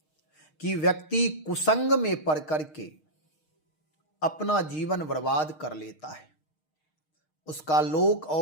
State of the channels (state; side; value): late; right; 6.5 ms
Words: कि व्यक्ति कुसंग में पड़ करके अपना जीवन बर्बाद कर लेता है। उसका लोक